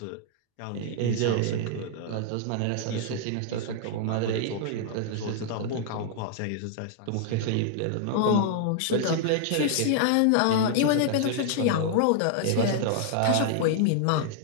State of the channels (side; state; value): both; different; correlation -0.01